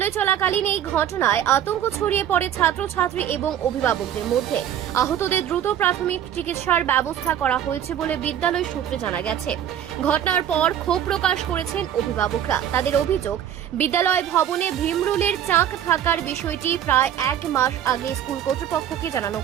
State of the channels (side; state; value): left; quieter; 10.2 dB